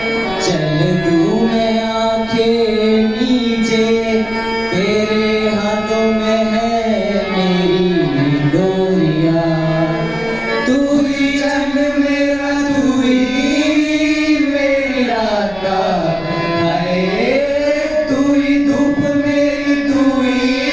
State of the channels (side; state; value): left; noise; rumble, 18 dB below the sound